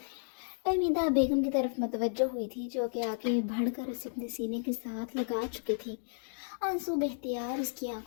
फहमीदा बेगम की तरफ मतवज्जो हुई थी जो कि आगे बढ़कर उसे अपने सीने के साथ लगा चुकी थी। आंसू बेख्तियार उसकी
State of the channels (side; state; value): right; silent; digital silence